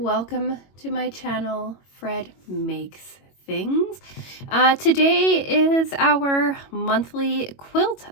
to my channel, Fred Makes Things. Today is our monthly quilt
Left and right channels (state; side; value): late; right; 22 ms